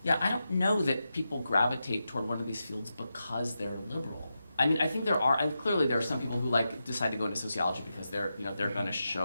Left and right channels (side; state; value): both; inverted; correlation -0.89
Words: Yeah, I don't know that people gravitate toward one of these fields because they're liberal. I mean, I think clearly there are some people who decide to go into sociology because they're going to